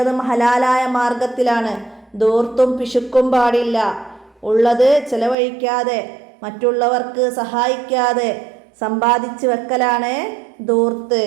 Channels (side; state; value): left; drops out; at 5.4 s